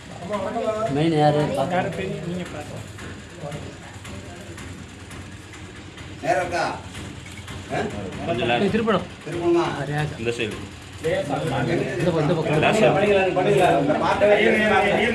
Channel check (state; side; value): identical; both; correlation 1.00